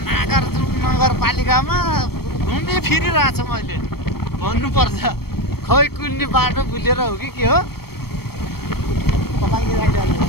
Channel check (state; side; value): late; right; 0.95 ms